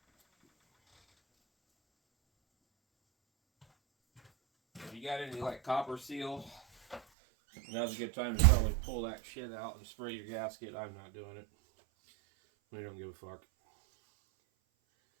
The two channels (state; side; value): drops out; left; at 7.0 s